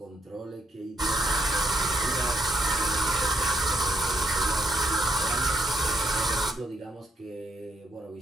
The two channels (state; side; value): normal; both; correlation 0.76